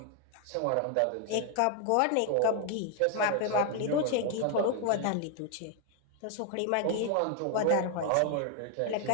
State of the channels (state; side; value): different; both; correlation 0.00